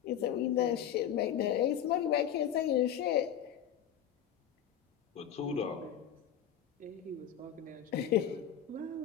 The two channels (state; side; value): quieter; right; 9.6 dB